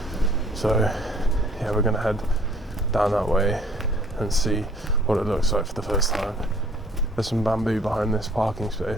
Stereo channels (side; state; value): both; normal; correlation 0.57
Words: so yeah, we're going to head down that way and see what it looks like for the first time. There's some bamboo behind this parking